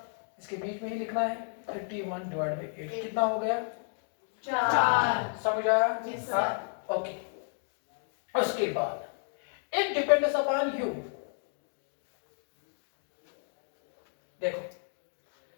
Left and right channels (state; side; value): silent; right; digital silence